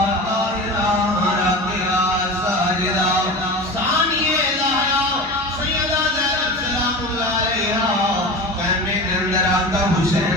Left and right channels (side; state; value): both; normal; correlation 0.31